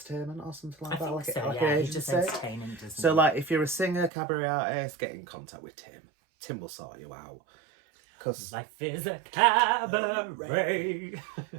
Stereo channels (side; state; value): left; drops out; at 4.1 s